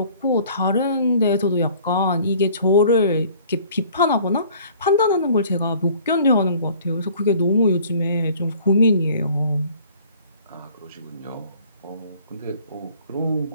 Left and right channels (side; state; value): both; inverted; correlation -0.53